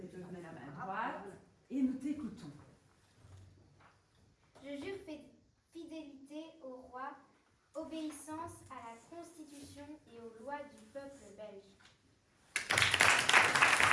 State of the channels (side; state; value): both; identical; correlation 1.00